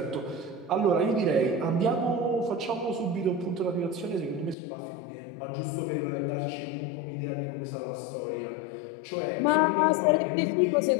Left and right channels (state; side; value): drops out; right; at 4.5 s